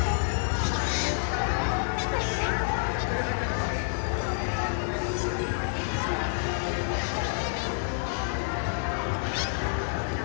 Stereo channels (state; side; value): silent; right; 59 dB below the other